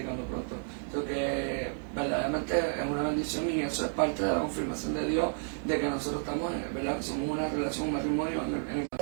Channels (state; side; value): silent; left; digital silence